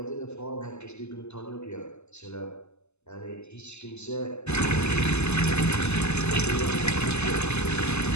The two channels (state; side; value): late; right; 0.81 ms